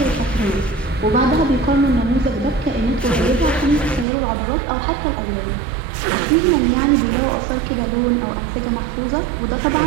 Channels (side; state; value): left; drops out; at 4.0 s